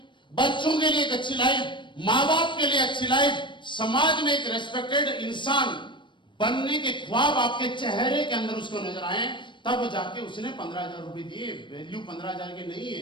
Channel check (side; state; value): right; late; 0.23 ms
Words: बच्चों के लिए एक अच्छी लाइफ, मां बाप के लिए अच्छी लाइफ, समाज में एक रेस्पेक्टेड इंसान बनने के ख्वाब आपके चेहरे के अंदर उसको नजर आए, तब जाके उसने 15,000 रुपए दिए। वैल्यू 15,000 के नहीं है।